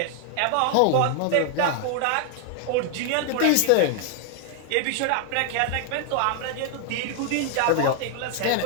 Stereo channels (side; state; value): both; different; correlation 0.00